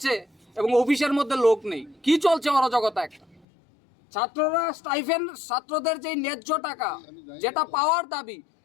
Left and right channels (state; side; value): drops out; right; at 3.5 s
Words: এবং অফিসের মধ্যে লোক নেই। কি চলছে অরাজকতা একটা। ছাত্ররা স্টাইফেন্ড, ছাত্রদের যে ন্যায্য টাকা যেটা পাওয়ার দাবি